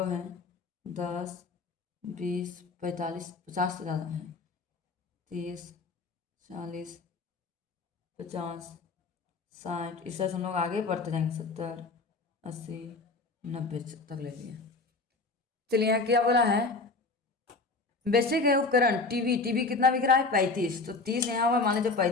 है, 10 20 45 50 से ज़्यादा है, 30 40 50 60। इस तरह से हम लोग आगे बढ़ते जाएंगे, 70 80 90 तक ले लिए। चलिए यहाँ क्या बोला है, बेचे गए उपकरण, टीवी कितना बिक रहा है, 35। तो 30 यहाँ हुआ, मान लीजिए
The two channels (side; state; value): right; quieter; 3.7 dB